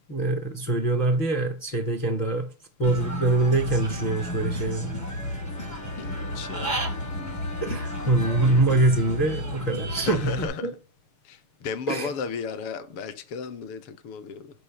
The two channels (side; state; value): right; late; 6.7 ms